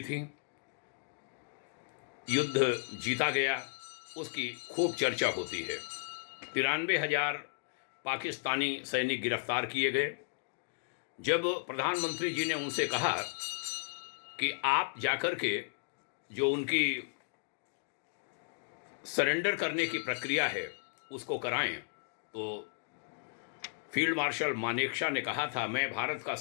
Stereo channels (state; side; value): silent; right; digital silence